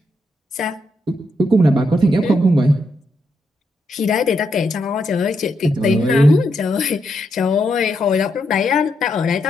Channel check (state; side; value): normal; both; correlation 0.80